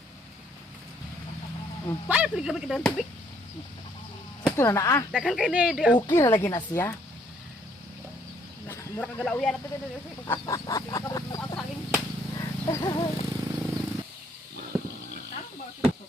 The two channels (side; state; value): both; normal; correlation 0.66